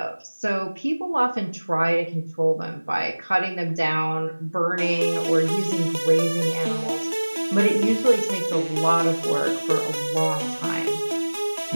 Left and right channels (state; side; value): inverted; both; correlation -1.00